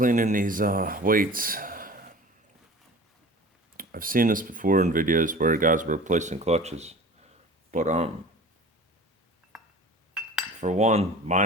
these weights, I've seen this before in videos where guys were replacing clutches, but for one,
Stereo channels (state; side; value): normal; both; correlation 0.41